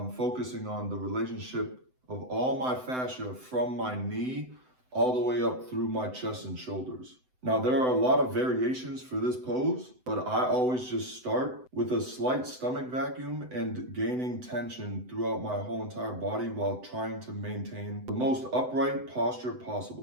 focusing on the relationship of all my fascia from my knee all the way up through my chest and shoulders. Now, there are a lot of variations for this pose, but I always just start with a slight stomach vacuum and gaining tension throughout my whole entire body while trying to maintain the most upright posture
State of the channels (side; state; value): left; late; 7.9 ms